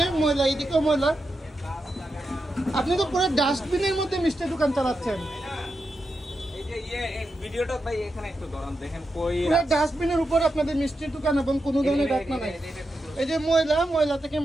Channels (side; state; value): both; normal; correlation 0.87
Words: ময়লা, এইদিকেও ময়লা। আপনি তো পুরো ডাস্টবিনের মধ্যে মিষ্টির দোকান চালাচ্ছেন। ডাস্টবিনের উপর আপনাদের মিষ্টির দোকান এবং কোনো ধরনের ঢাকনা নাই। এই যে ময়লা থেকে